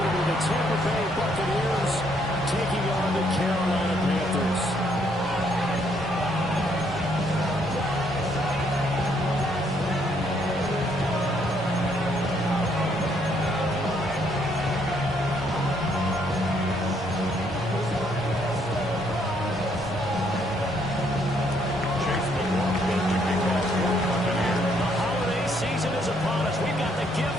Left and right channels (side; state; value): both; normal; correlation 0.70